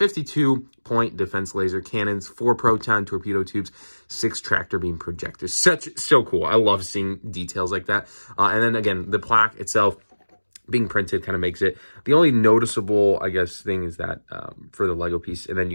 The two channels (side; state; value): both; inverted; correlation -1.00